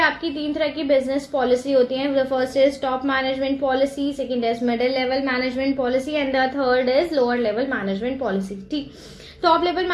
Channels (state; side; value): identical; both; correlation 1.00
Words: तीन तरह की business policy होती है. The first is top management policy, second is middle level management policy and the third is lower level management policy. ठीक, top level